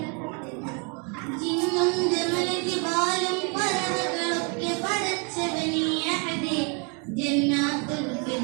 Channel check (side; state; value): left; quieter; 35.4 dB